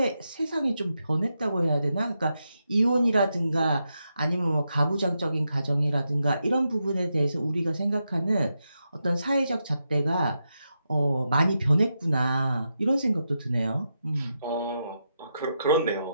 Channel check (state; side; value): inverted; both; correlation -0.85